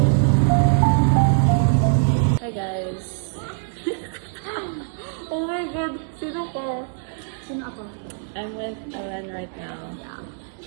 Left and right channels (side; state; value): left; silent; digital silence